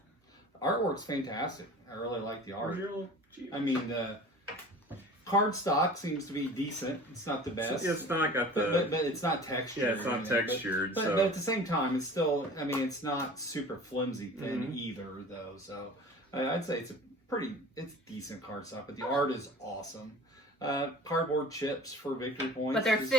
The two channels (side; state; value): both; normal; correlation 0.42